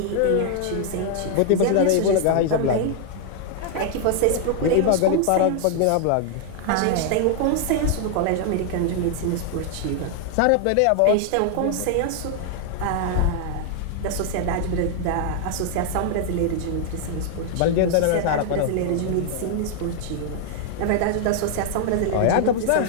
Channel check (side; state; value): both; different; correlation 0.00